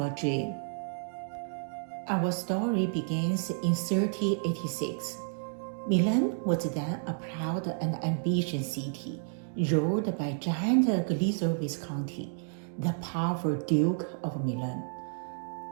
Dream. Our story begins in 1386. Milan was then a proud and ambitious city, ruled by giant Galizio Visconti, the powerful Duke of Milan.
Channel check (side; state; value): left; silent; digital silence